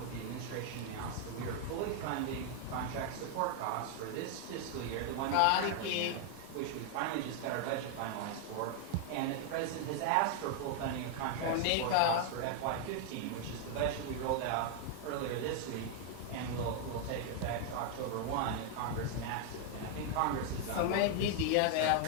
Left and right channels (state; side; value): different; both; correlation 0.00